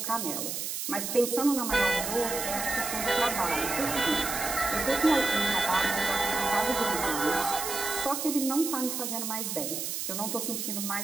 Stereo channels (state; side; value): noise; right; hiss, 3 dB below the sound